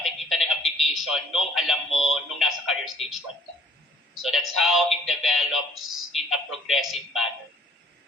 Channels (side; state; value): both; normal; correlation 0.55